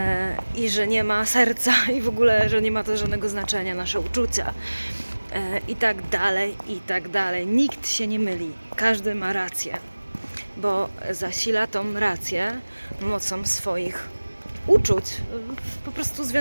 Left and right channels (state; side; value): inverted; both; correlation -1.00